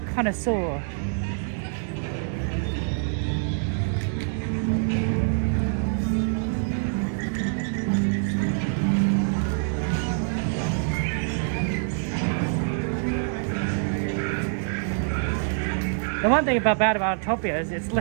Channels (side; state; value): left; silent; digital silence